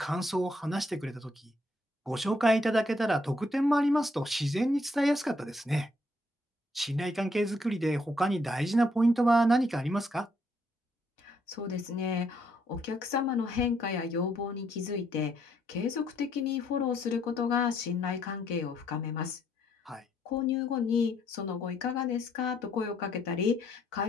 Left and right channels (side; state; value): both; normal; correlation 0.71